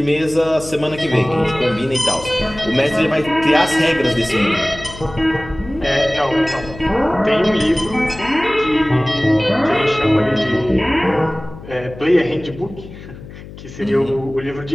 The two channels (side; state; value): left; noise; hum, 15 dB below the sound